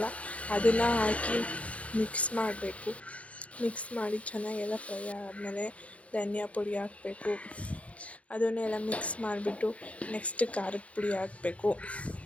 ಅದನ್ನು ಹಾಕಿ ಮಿಕ್ಸ್ ಮಾಡಬೇಕು. ಮಿಕ್ಸ್ ಮಾಡಿ ಚೆನ್ನಾಗೆಲ್ಲ ಫ್ರೈ ಆದಮೇಲೆ ಧನಿಯಾ ಪುಡಿ ಹಾಕಬೇಕು. ಅದನ್ನೆಲ್ಲ ಮಿಕ್ಸ್ ಮಾಡಿಬಿಟ್ಟು ನೆಕ್ಸ್ಟ್ ಖಾರದ ಪುಡಿ ಹಾಕಬೇಕು.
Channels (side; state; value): right; late; 0.064 ms